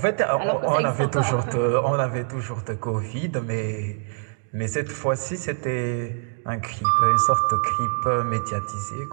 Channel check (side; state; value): left; silent; digital silence